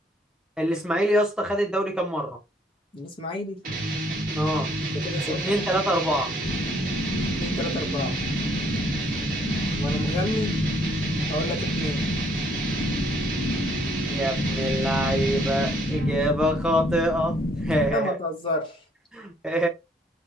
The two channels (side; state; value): both; normal; correlation 0.65